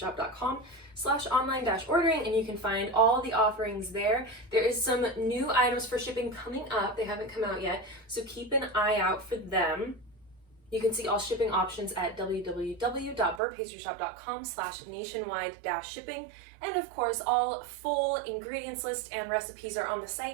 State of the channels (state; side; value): drops out; left; at 13.4 s